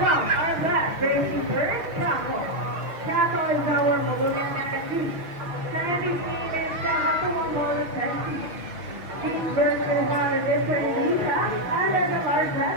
our black racing first Chaco. Chaco is our Molugan Nakati. Sandy's name is Chaco Mongola Sandy. Each version is on a different visa under the large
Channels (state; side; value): late; left; 6.4 ms